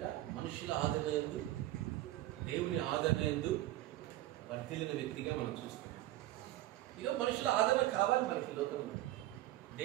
మనుషుల ఆదరణ యందు, దేవుని ఆదరణ యందు వర్ధిల్లిన వ్యక్తిగా మనం చూస్తాం. ఈరోజు మనుషుల ఆదరణ కావాలి మనకి లోకంలో.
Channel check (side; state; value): left; quieter; 15.6 dB